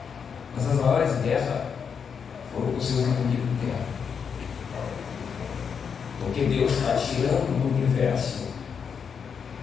mas as maiores guerras foram com os seus inimigos internos, porque Deus está tirando do universo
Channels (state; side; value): quieter; right; 6.7 dB